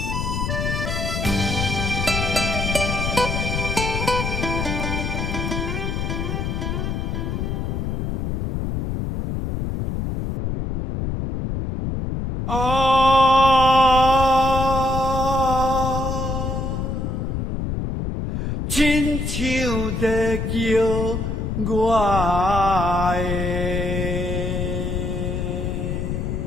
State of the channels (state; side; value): noise; left; rumble, 2 dB below the sound